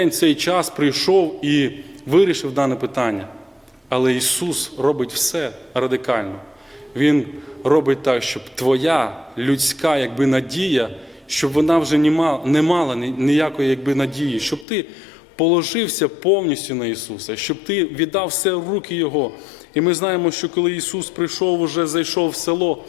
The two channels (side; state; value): right; drops out; at 14.7 s